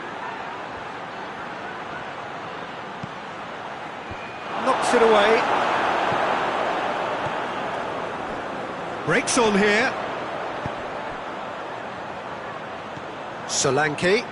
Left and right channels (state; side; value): identical; both; correlation 1.00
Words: Knocks it away. Breaks on here. Solanke.